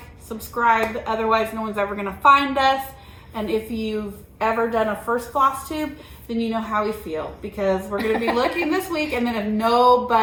subscribe. Otherwise, no one's ever going to find us. And if you've ever done a first Floss Tube, then you know how we feel. Because we're going to be looking this week. And then if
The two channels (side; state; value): both; identical; correlation 1.00